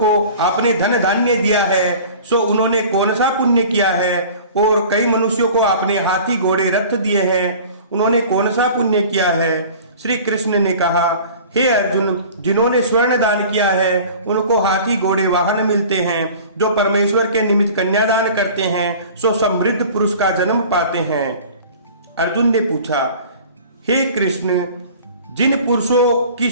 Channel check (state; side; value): inverted; both; correlation -0.43